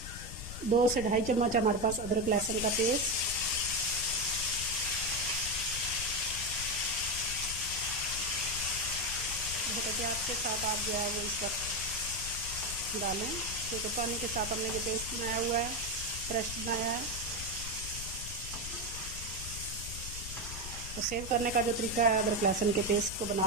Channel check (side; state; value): left; noise; rumble, 9 dB below the sound